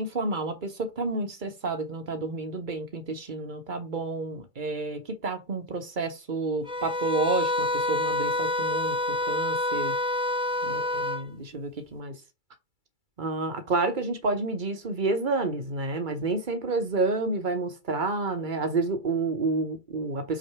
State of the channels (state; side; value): late; left; 2.3 ms